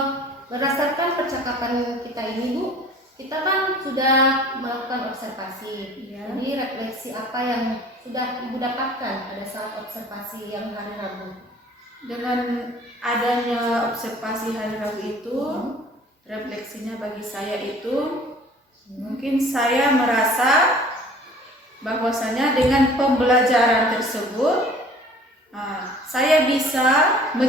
berdasarkan percakapan kita ini Bu, kita kan sudah melakukan observasi. Ya. Jadi refleksi apa yang sudah Ibu dapatkan pada saat observasi yang hari Rabu? Dengan adanya observasi hari Rabu itu, refleksinya bagi saya itu mungkin saya merasa bahwasanya dengan pembelajaran tersebut saya bisa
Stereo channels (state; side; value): normal; both; correlation 0.49